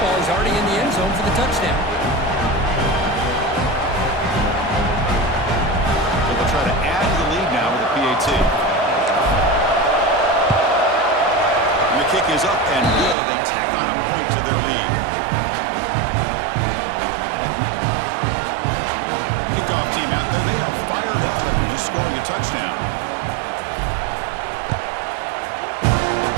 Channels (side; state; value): left; drops out; at 13.2 s